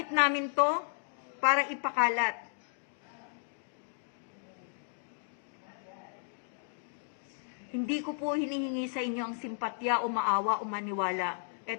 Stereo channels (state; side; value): silent; right; digital silence